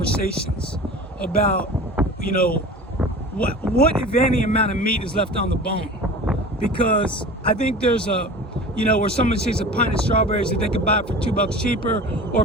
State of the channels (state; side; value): normal; both; correlation 0.37